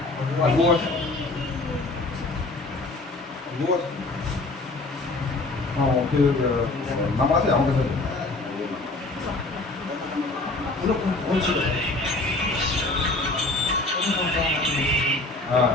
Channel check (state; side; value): quieter; right; 3.1 dB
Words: আছে, নাম্বার আছে আমার কাছে। হ্যাঁ